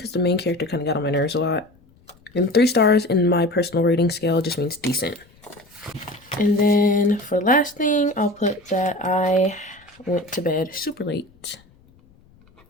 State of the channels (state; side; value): noise; left; rumble, 30 dB below the sound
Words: the main character kind of got on my nerves a lot. And 3 stars in my personal rating scale just means decent. And then for the last thing, I'll put that I went to bed super late.